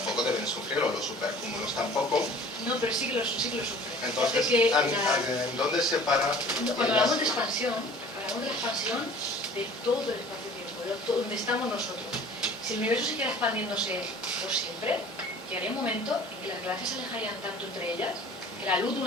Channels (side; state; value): both; normal; correlation 0.47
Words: deben sufrirlo, los supercúmulos tampoco. No, pero sí que lo sufren. Entonces, ¿en dónde se para? Cuando hablamos de expansión, hablamos de la expansión de todo el espacio-tiempo, de donde estamos nosotros. Si el universo siguiera expandiéndose por siempre, llegaría un momento en que las galaxias se alejarían tanto entre ellas que la luz de